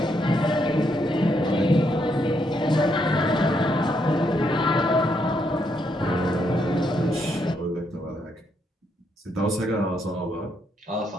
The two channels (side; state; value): both; normal; correlation 0.76